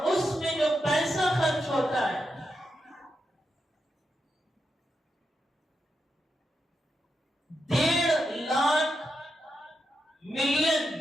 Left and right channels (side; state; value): both; normal; correlation 0.85